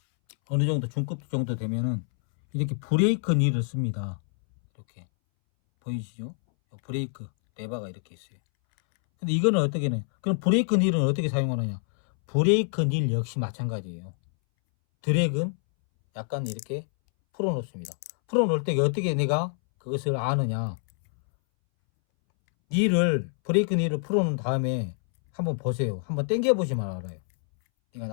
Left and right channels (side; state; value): right; silent; 61 dB below the other